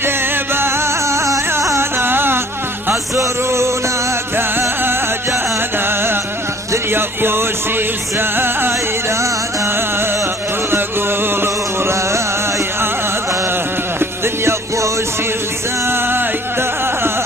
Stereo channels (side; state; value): both; normal; correlation 0.55